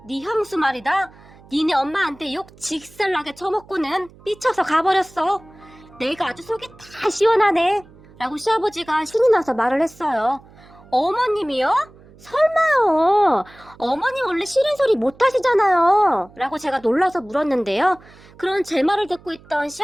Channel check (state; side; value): noise; right; hum, 24 dB below the sound